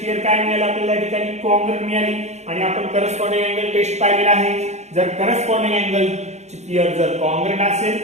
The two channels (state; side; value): late; left; 0.33 ms